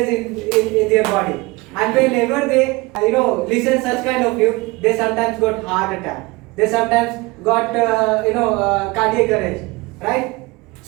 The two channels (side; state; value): left; quieter; 23.7 dB